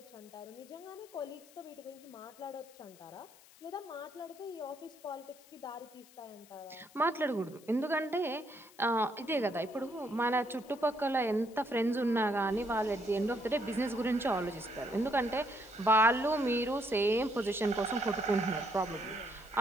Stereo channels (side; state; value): left; noise; hiss, 24 dB below the sound